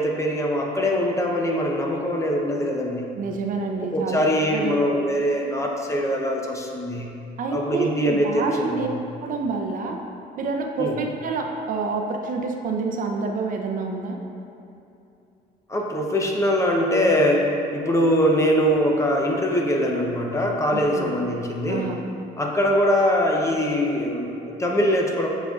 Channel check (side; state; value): both; normal; correlation 0.49